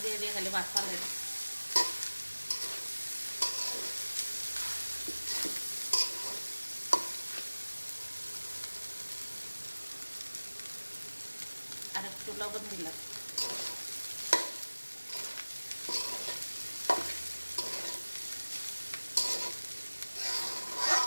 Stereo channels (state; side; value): inverted; both; correlation -1.00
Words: দিয়ে দিয়ে খালি ভাত ফালে দিই। আর একটু লবণ দিলাম।